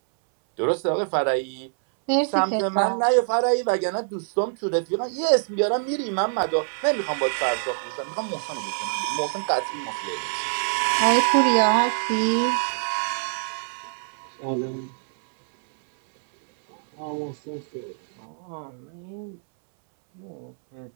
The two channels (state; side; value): silent; left; 62 dB below the other